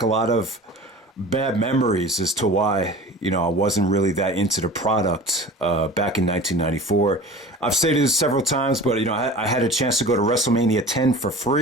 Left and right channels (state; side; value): normal; both; correlation 0.39